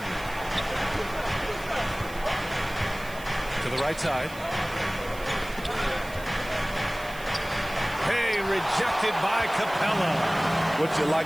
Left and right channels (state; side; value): noise; right; hiss, 18 dB below the sound